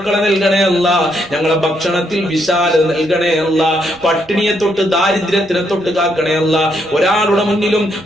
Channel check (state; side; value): noise; right; rumble, 28 dB below the sound